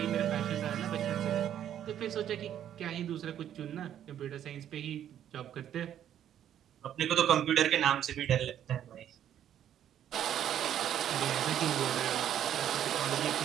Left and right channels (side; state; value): left; quieter; 10.4 dB